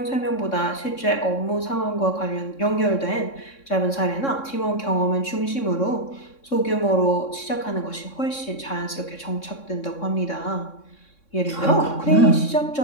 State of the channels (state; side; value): late; right; 3.6 ms